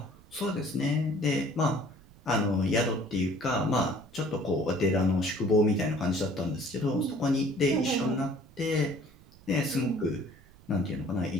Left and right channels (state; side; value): noise; right; rumble, 24 dB below the sound